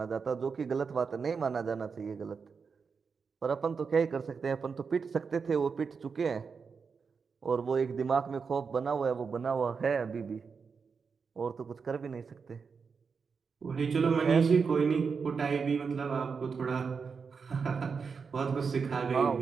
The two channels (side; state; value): left; quieter; 5.5 dB